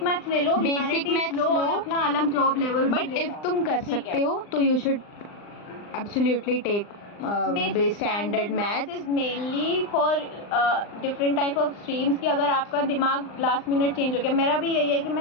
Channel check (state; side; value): late; right; 39 ms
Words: मैथ्स ले लो, बेसिक मैथ्स लो, अपना अलग जॉब लेवल। बट इफ तुम कर सकते हो तो you should absolutely take standard maths is mainly for different type of streams की अगर आपका दिमाग लास्ट मिनट चेंज हो गया। मेरा भी यही है कि मैं